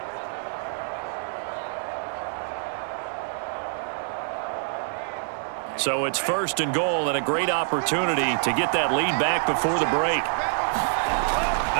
So it's 1st and goal and a great opportunity to get that lead back before the break.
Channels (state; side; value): silent; left; digital silence